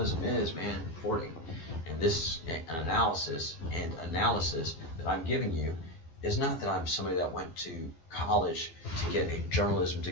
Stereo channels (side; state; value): right; late; 12 ms